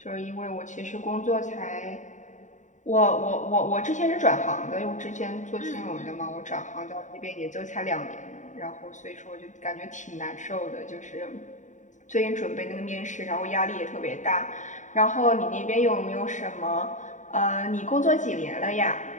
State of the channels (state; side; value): late; right; 0.36 ms